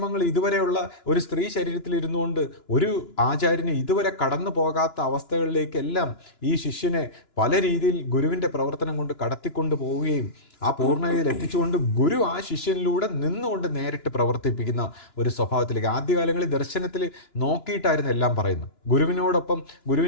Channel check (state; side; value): late; right; 2.9 ms